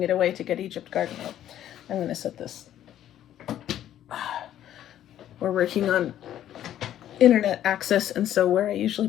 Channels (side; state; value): right; quieter; 11.6 dB